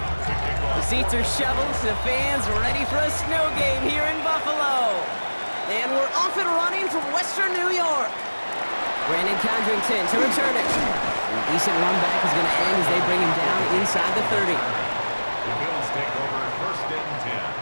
The seats are shoveled, the fans ready for a snow game here in Buffalo. And we're off and running from Western New York. Brandon Condrington to return it. A decent run back is going to end as they bring him down inside the 30. The Bills take over first and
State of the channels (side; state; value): both; inverted; correlation -1.00